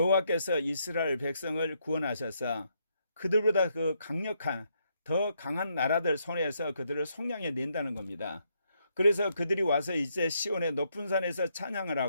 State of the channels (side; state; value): both; inverted; correlation -0.76